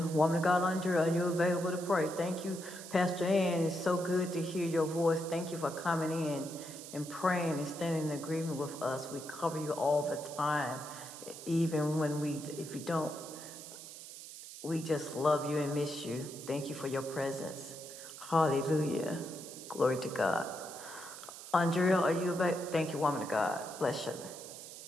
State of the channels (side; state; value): right; noise; hiss, 13 dB below the sound